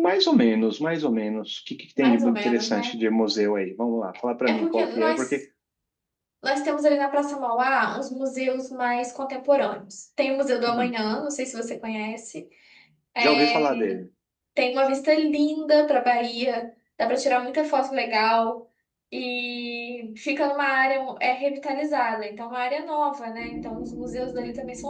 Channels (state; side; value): identical; both; correlation 1.00